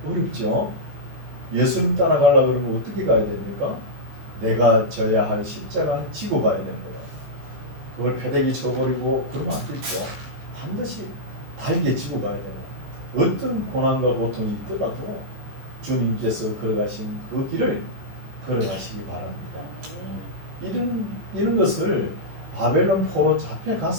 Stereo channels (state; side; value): late; left; 15 ms